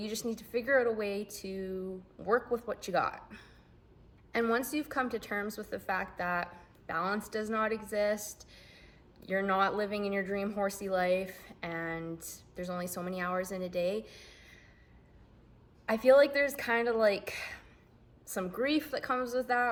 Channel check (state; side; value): identical; both; correlation 1.00